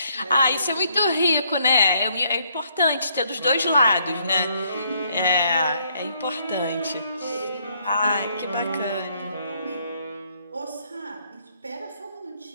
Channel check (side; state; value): both; inverted; correlation -0.69